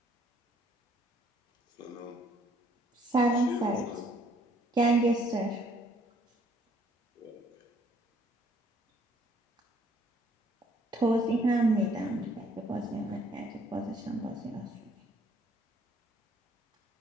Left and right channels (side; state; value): both; normal; correlation 0.63